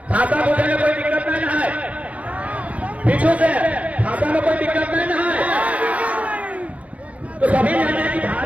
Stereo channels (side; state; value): left; late; 0.066 ms